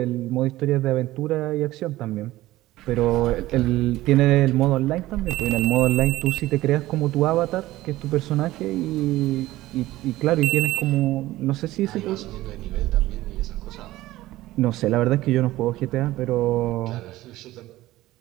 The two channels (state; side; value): quieter; left; 16.6 dB